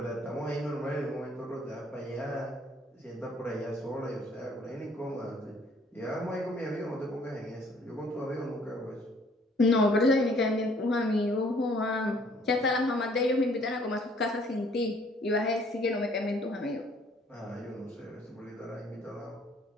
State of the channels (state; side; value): normal; both; correlation 0.60